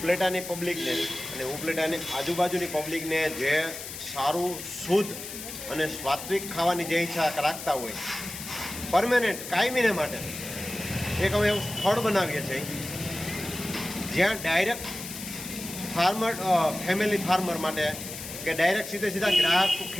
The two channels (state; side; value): noise; left; hiss, 10 dB below the sound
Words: પબ્લિકને અને ઉપલેટાની આજુબાજુની પબ્લિકને જે સારું, શુદ્ધ અને સાત્વિક ખાવાની જે ઈચ્છા રાખતા હોય પરમેનન્ટ કાયમીને માટે એક અમે એવું સ્થળ બનાવીએ છીએ જ્યાં ડાયરેક્ટ ફેમિલી ફાર્મર માટે કે ડાયરેક્ટ સીધા ગ્રાહક